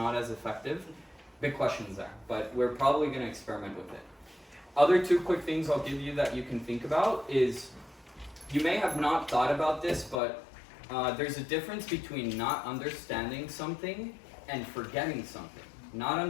as effective? Big questions there, but we're probably going to experiment with it. Other 2 quick things I'll give you that you can think about is, you may have not thought about this, but there's a difference between not understanding something and forgetting something. Not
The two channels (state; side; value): drops out; right; at 10.2 s